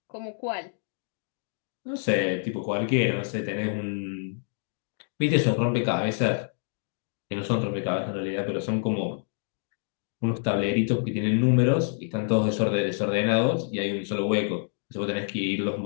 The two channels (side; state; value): right; silent; digital silence